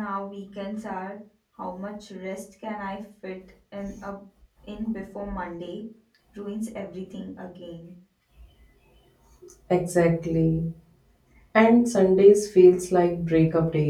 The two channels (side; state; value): both; identical; correlation 1.00